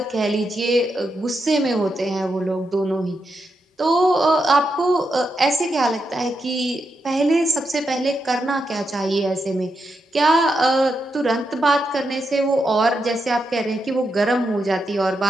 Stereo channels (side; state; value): both; normal; correlation 0.85